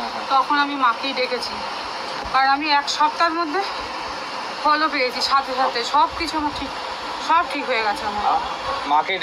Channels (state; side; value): identical; both; correlation 1.00